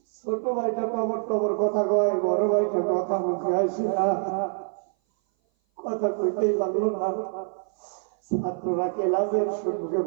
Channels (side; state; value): left; silent; 57 dB below the other